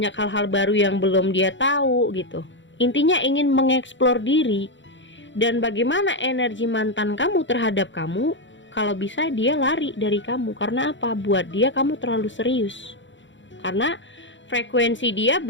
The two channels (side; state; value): right; late; 0.54 ms